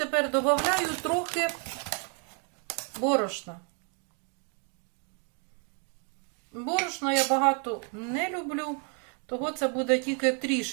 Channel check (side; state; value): left; quieter; 39.6 dB